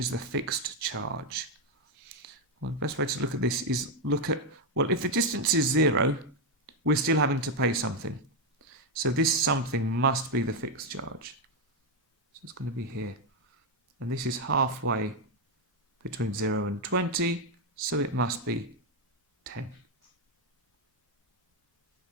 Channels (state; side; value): normal; both; correlation 0.04